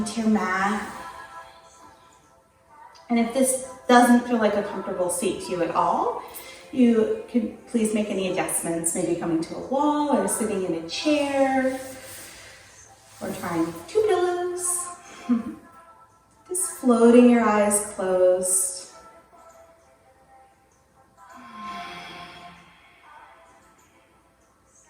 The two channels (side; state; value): both; identical; correlation 1.00